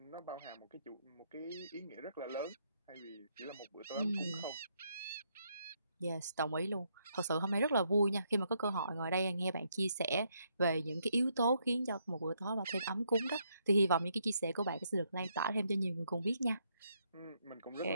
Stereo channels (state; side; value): inverted; both; correlation -0.75